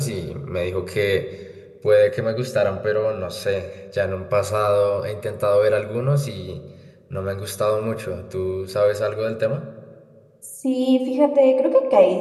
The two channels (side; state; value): both; identical; correlation 1.00